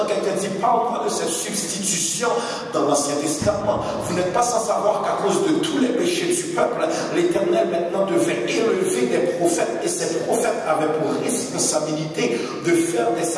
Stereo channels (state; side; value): identical; both; correlation 1.00